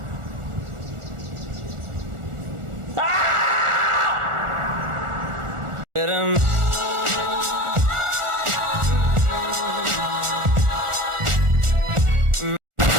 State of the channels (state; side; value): late; left; 1.4 ms